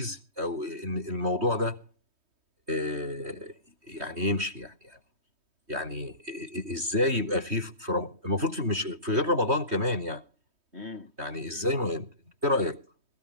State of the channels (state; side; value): late; left; 3.2 ms